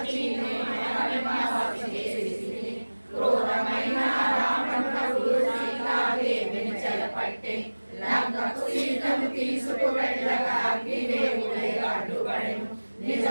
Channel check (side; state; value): both; inverted; correlation -1.00